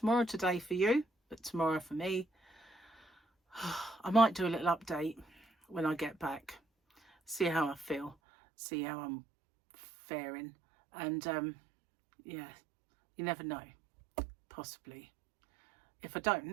today for you, but tomorrow for me. I might do a little update when I get back. See how I feel. See how I'm faring. And yeah, you never know. Possibly. If I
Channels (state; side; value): drops out; left; at 8.2 s